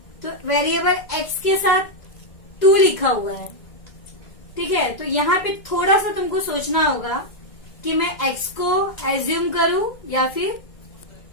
तो वेरिएबल x के साथ 2 लिखा हुआ है। ठीक है, तो यहाँ पे थोड़ा सा तुमको सोचना होगा कि मैं x को एज्यूम करूं या फिर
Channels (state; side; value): late; right; 2.0 ms